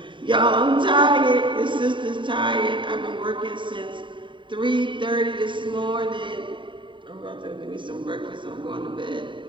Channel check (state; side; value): late; left; 0.23 ms